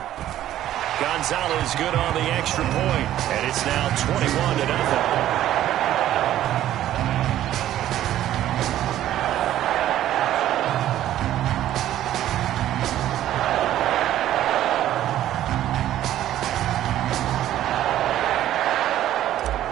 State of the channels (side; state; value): left; quieter; 12.7 dB